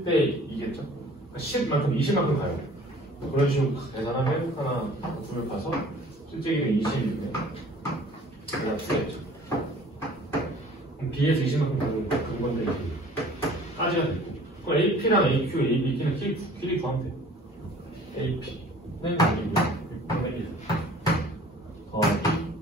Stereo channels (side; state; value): both; normal; correlation 0.50